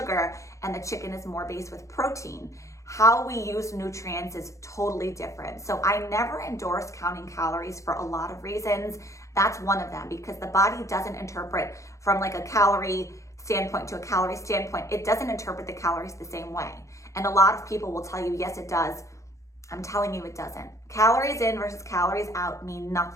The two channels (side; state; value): right; late; 0.15 ms